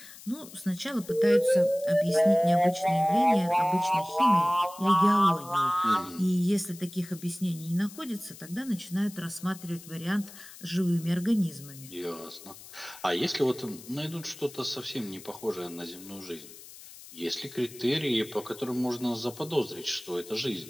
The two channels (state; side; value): noise; left; hiss, 17 dB below the sound